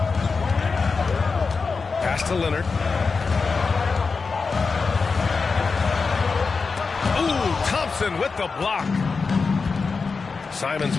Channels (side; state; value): right; quieter; 4.7 dB